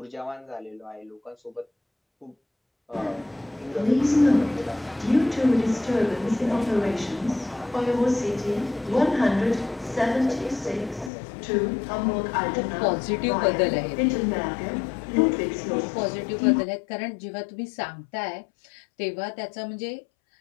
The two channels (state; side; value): drops out; right; at 11.1 s